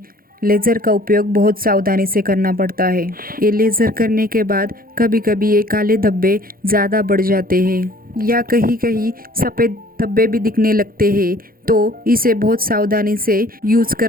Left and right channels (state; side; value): late; left; 0.42 ms